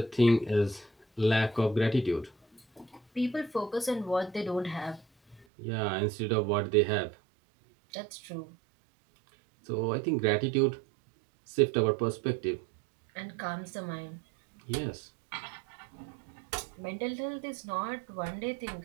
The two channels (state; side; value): drops out; left; at 5.5 s